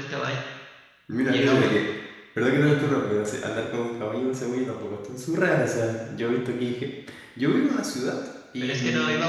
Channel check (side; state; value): both; identical; correlation 1.00